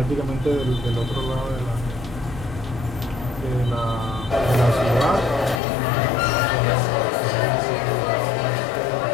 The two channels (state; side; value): drops out; right; at 5.6 s